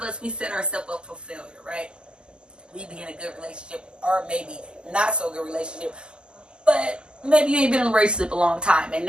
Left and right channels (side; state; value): left; late; 0.048 ms